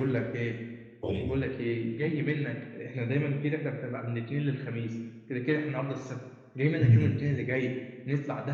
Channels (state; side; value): identical; both; correlation 1.00